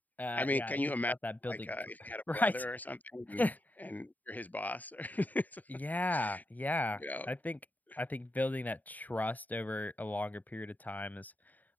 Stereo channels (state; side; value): late; right; 0.081 ms